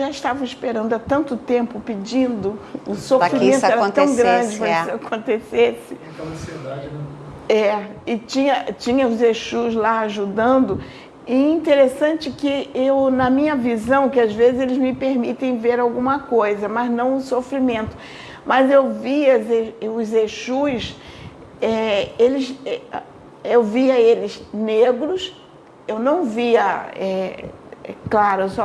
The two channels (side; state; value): both; identical; correlation 1.00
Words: estavam esperando há tanto tempo, pedindo, o sofrimento era tão grande para que isso acontecesse. Aquela ansiedade, né? E tinha os Exus lá ajudando. E interessante que na minha visão, que às vezes eles me permitem ver alguma coisa, mas não o sofrimento. Mas eu via os Exus, eu via eles negros, eu não via, claro, eu